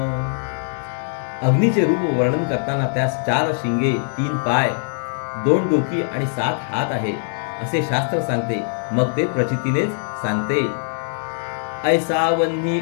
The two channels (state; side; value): silent; right; 65 dB below the other